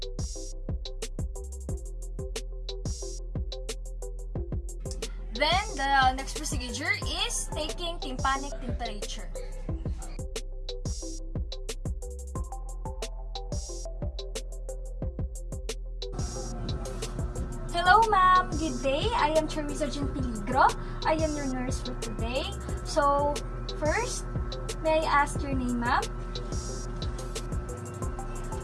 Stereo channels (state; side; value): identical; both; correlation 1.00